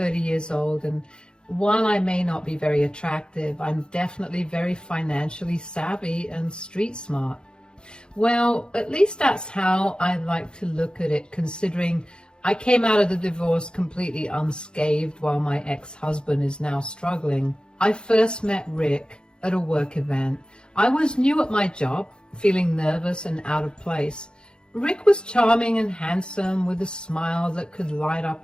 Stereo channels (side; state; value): right; late; 0.049 ms